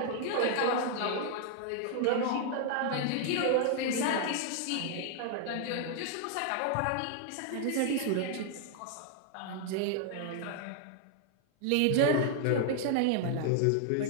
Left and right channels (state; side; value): different; both; correlation 0.00